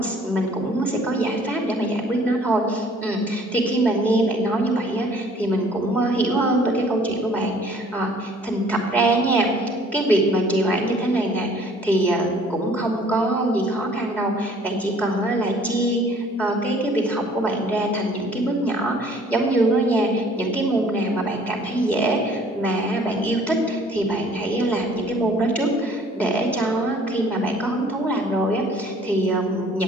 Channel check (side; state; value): both; normal; correlation 0.55